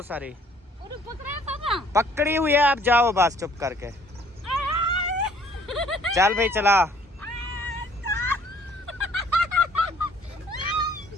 सारी। अरे पकड़े पापा। पकड़ी हुई है, आप जाओ बस चुप करके। चल भाई चला।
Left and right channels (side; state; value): both; normal; correlation 0.59